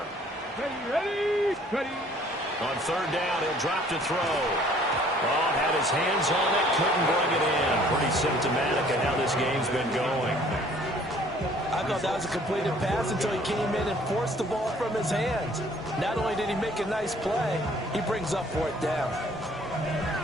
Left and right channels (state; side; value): normal; both; correlation 0.57